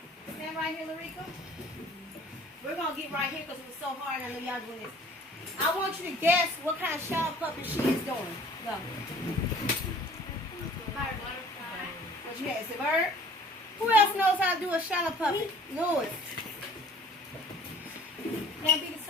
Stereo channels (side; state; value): both; normal; correlation 0.51